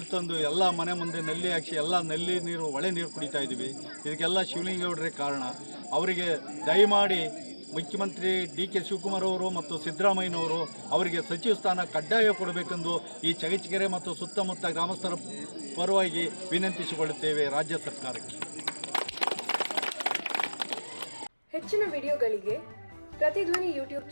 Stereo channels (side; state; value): both; inverted; correlation -1.00